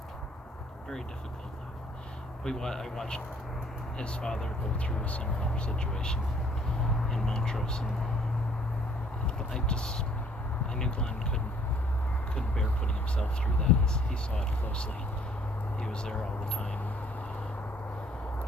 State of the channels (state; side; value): normal; both; correlation 0.60